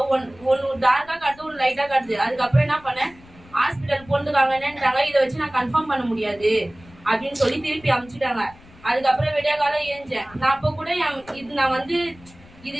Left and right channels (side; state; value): left; noise; rumble, 24 dB below the sound